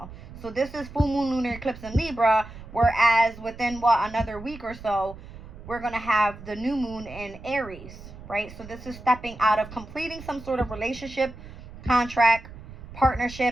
So this is full moon lunar eclipse in Libra, whereas within another week or so we're going to have the new moon in Aries, right? So this is stepping out of completing some sort of relationship, contract,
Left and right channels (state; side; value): noise; right; rumble, 15 dB below the sound